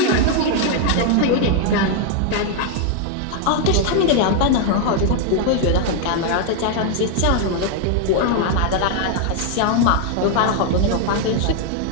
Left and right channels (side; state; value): both; different; correlation 0.00